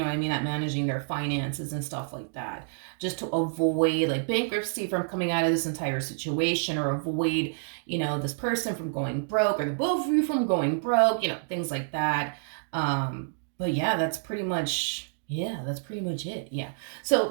what I mean? At managing their finances and stuff like that. Just to avoid like bankruptcy from coming out of this entire situation, or avoid, you know, this person from going broke, or the both of you from going broke, you know, things like that. But yeah, that's pretty much it. Yeah. So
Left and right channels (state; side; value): silent; left; digital silence